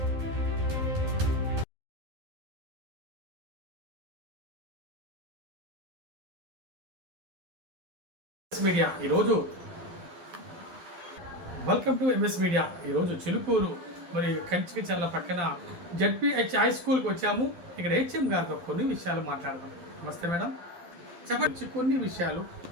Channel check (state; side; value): late; left; 12 ms